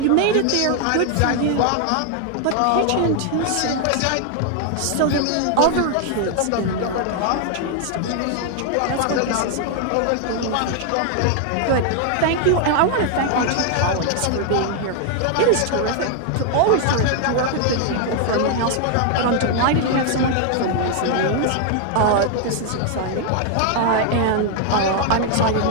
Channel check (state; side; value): different; both; correlation 0.00